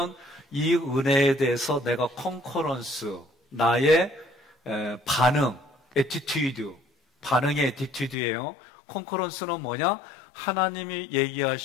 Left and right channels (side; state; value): right; drops out; at 8.2 s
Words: 이 은혜에 대해서 내가 컨커런스, 나의 반응, 애티튜드, 반응의 애티튜드예요. 컨커런스는 뭐냐? 하나님이